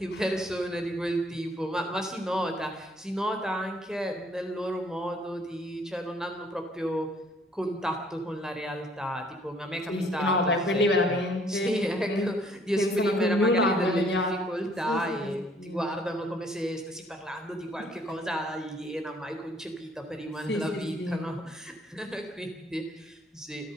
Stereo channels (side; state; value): both; normal; correlation 0.61